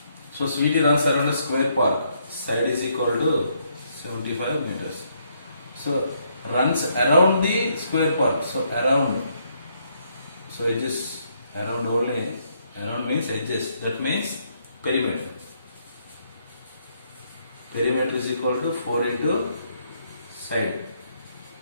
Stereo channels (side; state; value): both; inverted; correlation -0.73